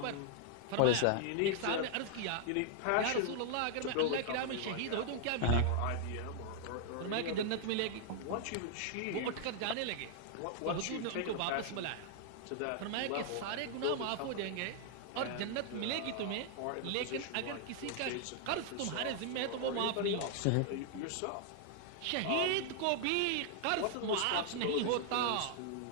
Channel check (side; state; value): both; different; correlation 0.00